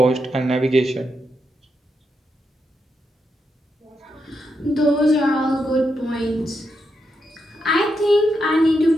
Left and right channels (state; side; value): normal; both; correlation 0.83